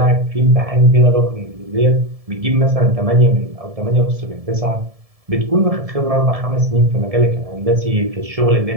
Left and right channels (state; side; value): late; left; 1.7 ms